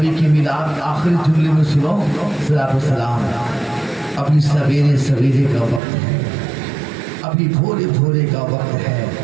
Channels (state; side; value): drops out; left; at 5.8 s